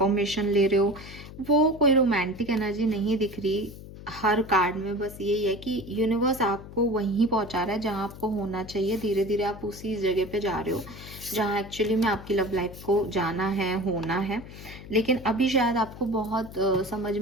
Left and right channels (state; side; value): noise; left; hum, 15 dB below the sound